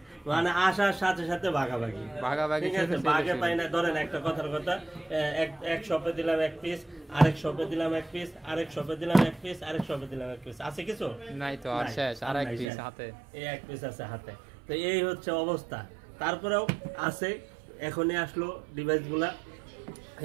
মানে আসার সাথে সাথে ভাগাভাগি, ঠিক আছে, ভাগে পাই না। ধরেন একটা কথার কথা, এক শপে দিলাম এক পিস, আরেক শপে দিলাম এক পিস, আরেক শপে দিলাম এক পিস, আরেক শপে দিলাম এক পিস, আছে কিছু নাই তো, আর শেষ, আর এক পিস হাতে, এই এক পিস আছে হাতে। তো এই হচ্ছে অবস্থা। তারপরেও আছে, এখনই আসলো ডিভাইস গুলা,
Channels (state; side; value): drops out; left; at 12.7 s